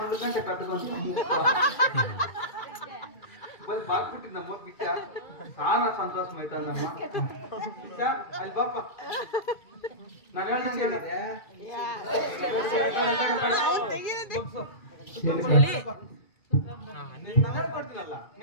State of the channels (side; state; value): right; late; 2.3 ms